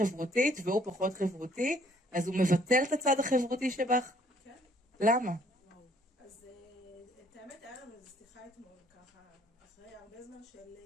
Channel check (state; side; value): normal; both; correlation 0.62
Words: והוא פחות חברותי, אז הוא מבטל את הצד החברותי שבך? כן. למה? אז את האמת היה לנו איזו שיחה אתמול, ככה, אחרי הרבה זמן של...